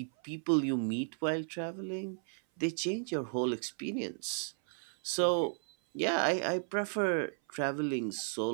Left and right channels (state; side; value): silent; left; 55 dB below the other